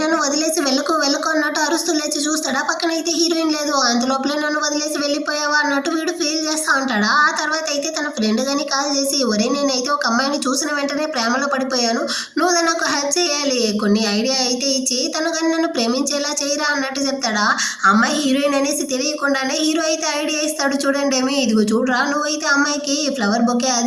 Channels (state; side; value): identical; both; correlation 1.00